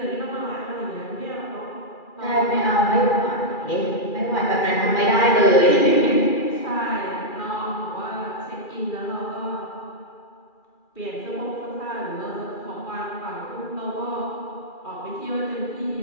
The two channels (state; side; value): late; right; 2.4 ms